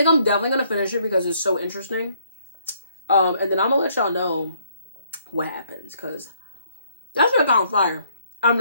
definitely gonna finish it because it's so interesting. And then I'm gonna let y'all know what happens, because that's gonna on fire. I'm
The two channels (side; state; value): both; inverted; correlation -0.67